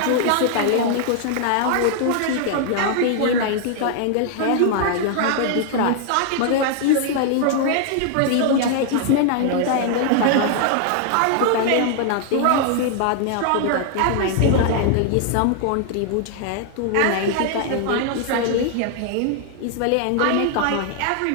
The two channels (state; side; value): different; both; correlation 0.00